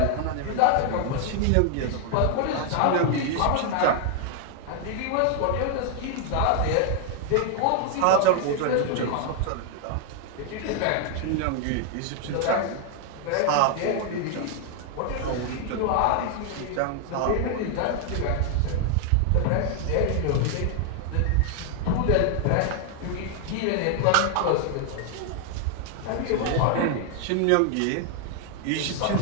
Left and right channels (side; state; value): both; different; correlation 0.00